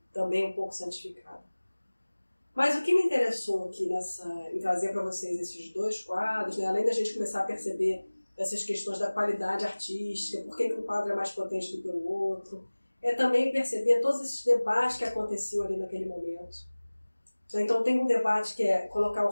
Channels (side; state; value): both; inverted; correlation -1.00